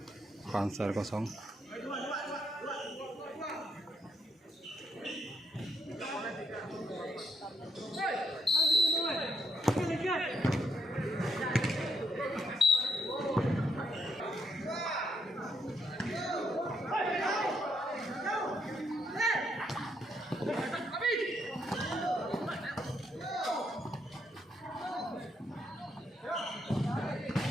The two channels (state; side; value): normal; both; correlation 0.75